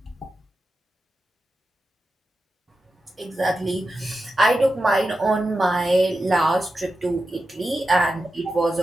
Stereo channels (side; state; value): both; normal; correlation 0.91